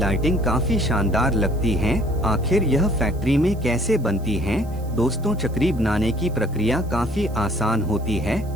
काफी शानदार लगती है। आखिर यह फैक्ट्री में कैसे बनती है। दोस्तों, चक्री बनाने की प्रक्रिया काफी आसान होती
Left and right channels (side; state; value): right; noise; hiss, 25 dB below the sound